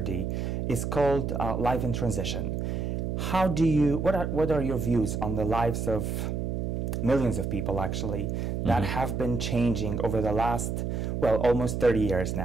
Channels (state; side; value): noise; right; hum, 2 dB below the sound